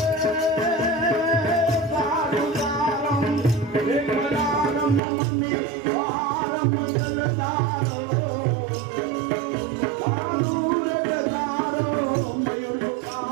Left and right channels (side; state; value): left; drops out; at 5.0 s